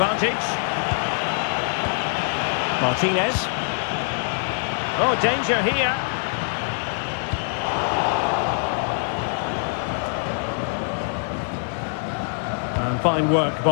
Martinez. Oh, danger here. And fine work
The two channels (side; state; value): right; silent; 63 dB below the other